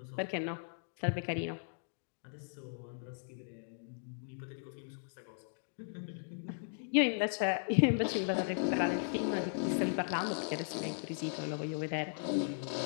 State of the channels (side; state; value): right; silent; digital silence